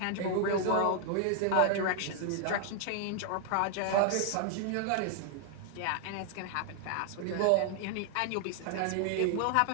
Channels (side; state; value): both; different; correlation 0.00